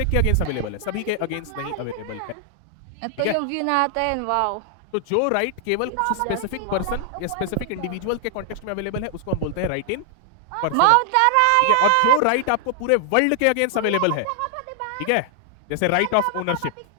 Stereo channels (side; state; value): both; different; correlation 0.00